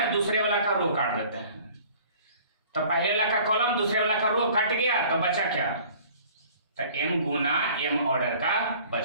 दूसरे वाला का रो काट देते हैं। तो पहले वाला का कॉलम दूसरे वाला का रो कट गया, तो बचा क्या, तो m गुना m ऑर्डर का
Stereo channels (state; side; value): inverted; both; correlation -0.50